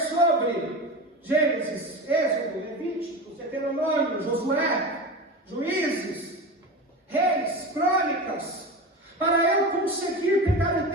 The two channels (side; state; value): both; normal; correlation 0.26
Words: Gênesis, Êxodo, Levítico, Deuteronômio, Josué, Juízes, Reis, Crônicas, para eu conseguir pegar o